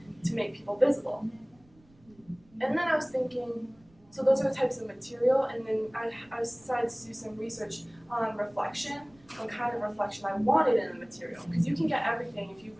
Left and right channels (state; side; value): noise; right; rumble, 30 dB below the sound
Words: to make people visible. And then I was thinking, so those are the types of material, and then I decided to do some research on reflection, on kind of reflection I wanted in the material. Because you can get everything if you